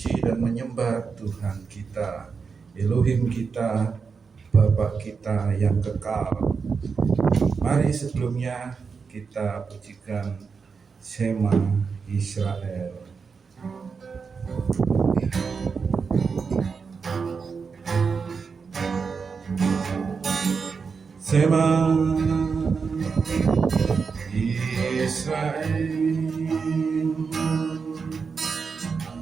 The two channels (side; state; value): left; quieter; 5.4 dB